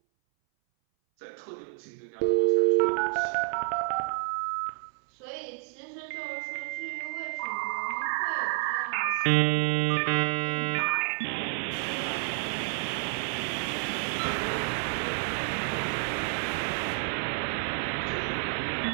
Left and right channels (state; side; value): silent; left; 58 dB below the other